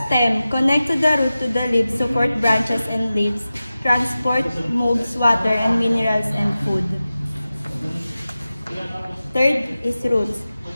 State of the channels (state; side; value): inverted; both; correlation -0.95